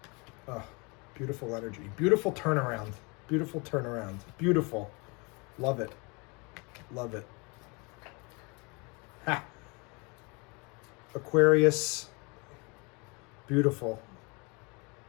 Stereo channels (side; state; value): right; quieter; 29.7 dB